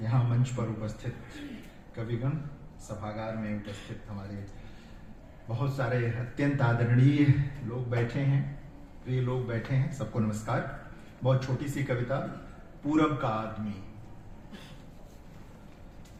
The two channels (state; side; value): identical; both; correlation 1.00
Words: यहाँ मंच पर उपस्थित कविगण, सभागार में उपस्थित हमारे बहुत सारे अत्यंत आदरणीय लोग बैठे हैं, प्रिय लोग बैठे हैं, सबको नमस्कार। बहुत छोटी सी कविता। पूरब का आदमी।